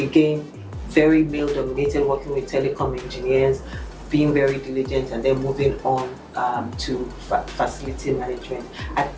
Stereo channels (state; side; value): identical; both; correlation 1.00